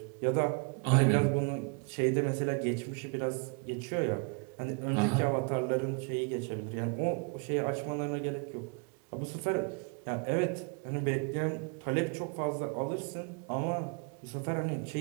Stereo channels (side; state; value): left; quieter; 36.7 dB